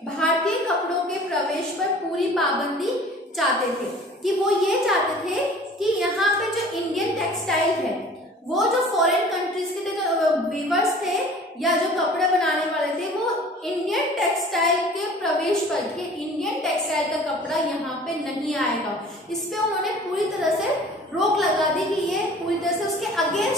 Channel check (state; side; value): normal; both; correlation 0.46